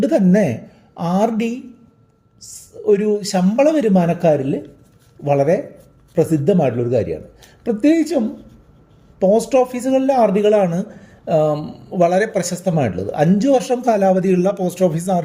തന്നെ RD ഒരു ശമ്പള വരുമാനക്കാരിൽ വളരെ പ്രസിദ്ധമായിട്ടുള്ളൊരു കാര്യമാണ്. പ്രത്യേകിച്ചും പോസ്റ്റ് ഓഫീസുകളിലെ RDകളാണ് വളരെ പ്രശസ്തമായിട്ടുള്ളത്. 5 വർഷം കാലാവധിയുള്ള പോസ്റ്റ് ഓഫീസ്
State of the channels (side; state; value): both; identical; correlation 1.00